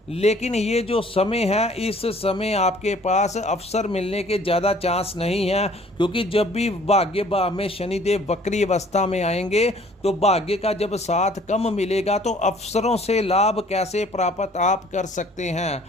लेकिन ये जो समय है, इस समय आपके पास अवसर मिलने के ज़्यादा चांस नहीं है, क्योंकि जब भी भाग्य में शनिदेव वक्री अवस्था में आएंगे तो भाग्य का जब साथ कम मिलेगा तो अवसरों से लाभ कैसे प्राप्त आप कर सकते हैं।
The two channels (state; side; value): normal; both; correlation 0.55